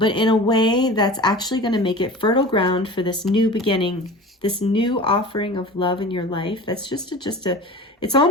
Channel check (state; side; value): normal; both; correlation 0.37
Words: in a way that's actually going to make it fertile ground for this new beginning, this new offering of love in your life. That's just a it's